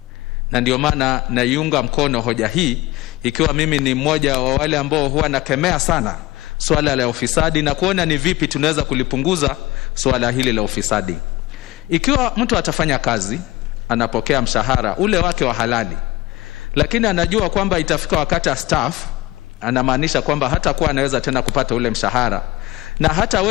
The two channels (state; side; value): quieter; right; 19.0 dB